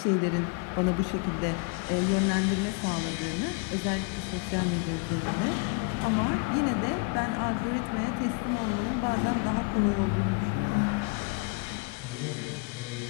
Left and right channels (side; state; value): right; quieter; 30.4 dB